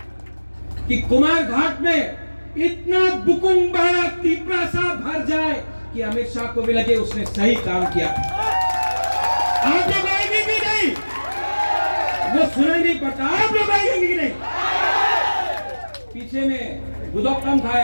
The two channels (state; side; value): inverted; both; correlation -1.00